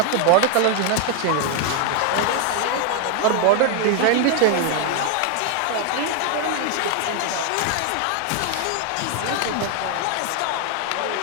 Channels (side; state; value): both; different; correlation 0.01